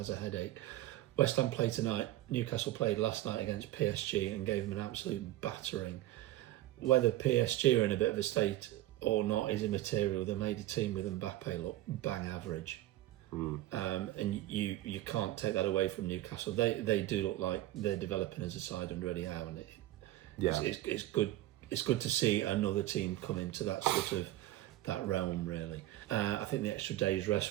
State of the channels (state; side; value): quieter; left; 15.5 dB